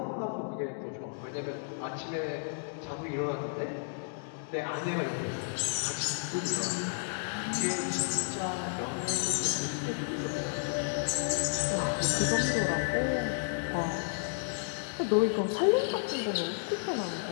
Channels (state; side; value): silent; right; digital silence